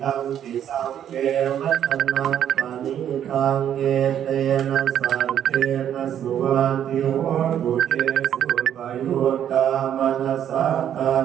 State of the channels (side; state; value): left; quieter; 9.9 dB